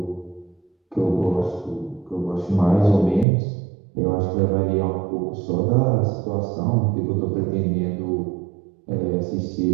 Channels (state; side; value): drops out; left; at 3.2 s